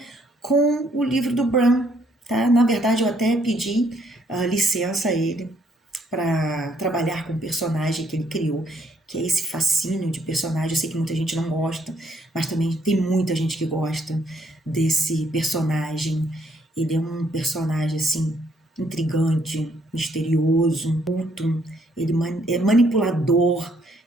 com o livro do Bram, tá? Na verdade, eu até pedi licença a ele para trabalhar com o personagem que ele criou, que é esse fascínio de personagem. Eu sei que muita gente não gosta, mas também tem muita gente que gosta desse personagem. Ele é um personagem, assim, intrigante, misterioso, culto, ele é manipulador,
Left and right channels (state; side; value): normal; both; correlation 0.69